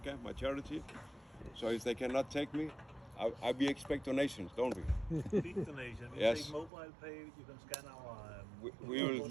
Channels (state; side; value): drops out; left; at 6.7 s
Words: my charity. So if they cannot take me, we expect donations, don't we? Big donation. We Yes. take mobile pay. You can scan our.